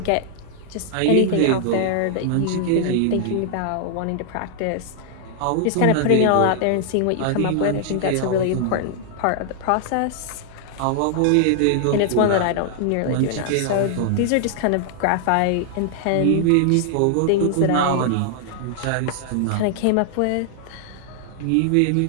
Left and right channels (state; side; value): different; both; correlation -0.01